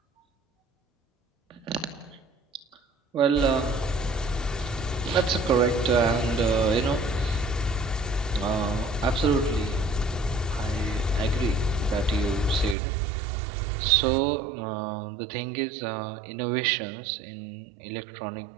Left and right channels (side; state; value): left; drops out; at 12.8 s